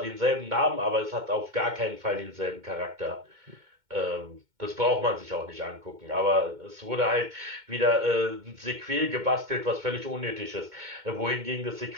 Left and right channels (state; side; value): late; left; 2.2 ms